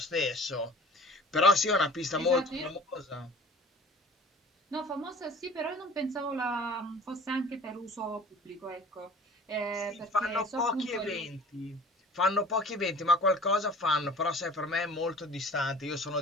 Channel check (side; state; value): both; normal; correlation 0.45